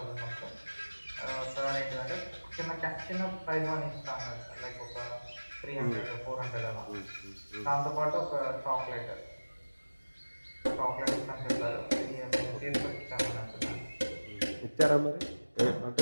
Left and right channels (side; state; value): both; inverted; correlation -1.00